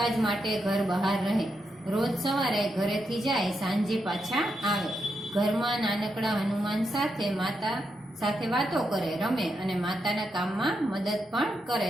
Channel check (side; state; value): both; normal; correlation 0.83